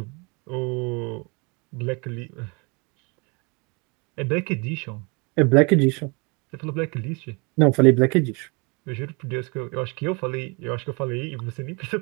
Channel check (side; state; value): left; quieter; 30.3 dB